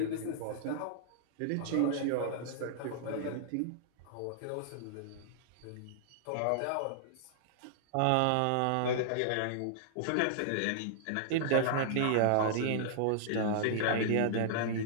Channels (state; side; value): different; both; correlation -0.01